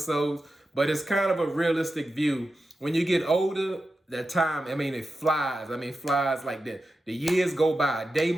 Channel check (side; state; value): both; normal; correlation 0.91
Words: but it's kind of a realistic view. When you get older, that time, it flies. Flies like that. The years go by. A day